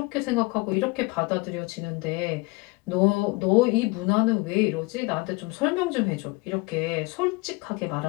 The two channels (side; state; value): right; quieter; 25.6 dB